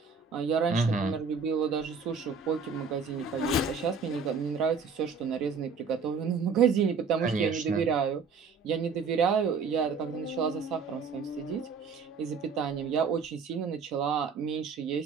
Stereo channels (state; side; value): quieter; left; 5.3 dB